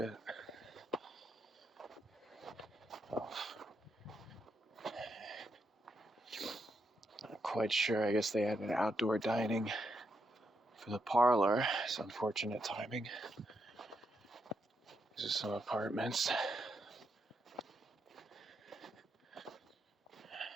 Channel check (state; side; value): normal; both; correlation 0.81